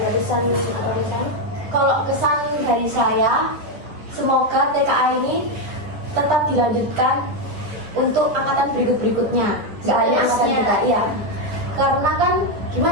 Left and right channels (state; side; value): late; left; 9.9 ms